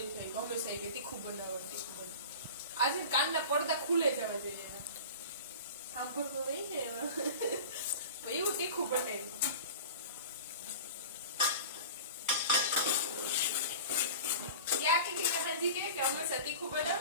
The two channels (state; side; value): inverted; both; correlation -0.36